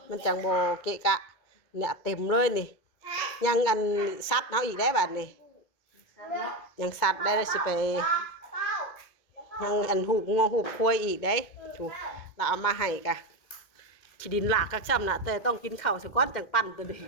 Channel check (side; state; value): right; late; 2.2 ms